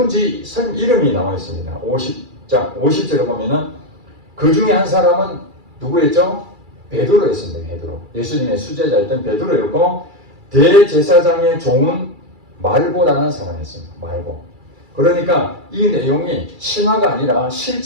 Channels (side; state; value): left; late; 2.3 ms